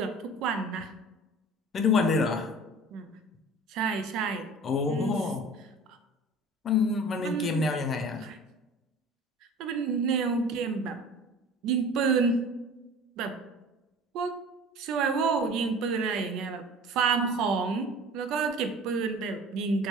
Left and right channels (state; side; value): normal; both; correlation 0.42